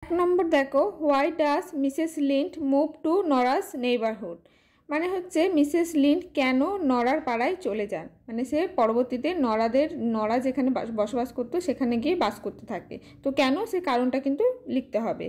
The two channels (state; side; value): identical; both; correlation 1.00